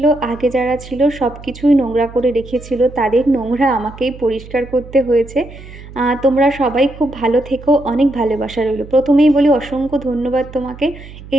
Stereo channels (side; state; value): right; noise; hum, 17 dB below the sound